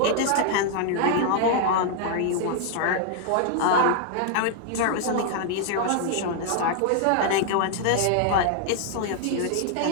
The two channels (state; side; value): different; both; correlation 0.00